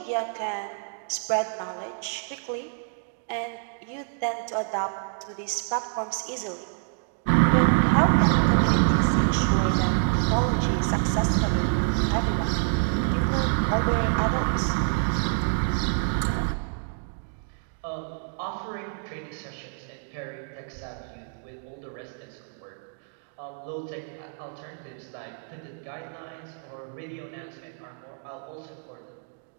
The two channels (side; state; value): left; silent; digital silence